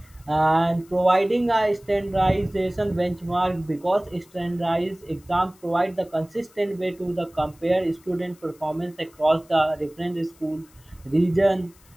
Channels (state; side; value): noise; left; hiss, 29 dB below the sound